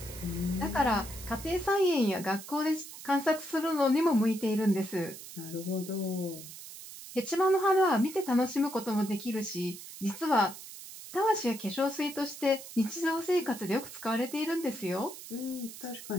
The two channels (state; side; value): noise; right; hiss, 13 dB below the sound